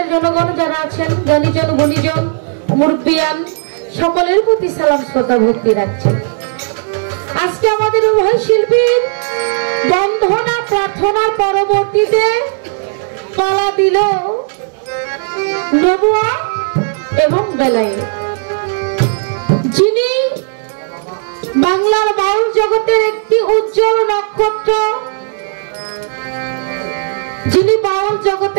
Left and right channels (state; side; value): silent; left; digital silence